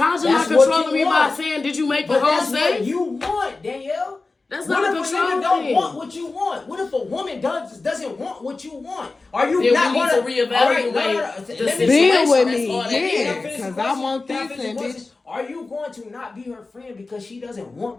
not controlling me by saying, "Did you make the home safe?" That's what you want, Danielle. That's what not a if control a nigga thing. don't want what you want? What if a woman doesn't want what you want? Are you then not we need going to reevaluate the situation? Be with That's me, all that yeah. is. Because I want this and bitch. Are you going to not be her friend because she doesn't want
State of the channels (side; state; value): right; quieter; 3.6 dB